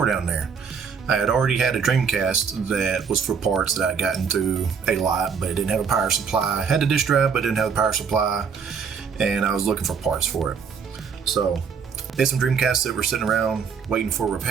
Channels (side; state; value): left; quieter; 6.3 dB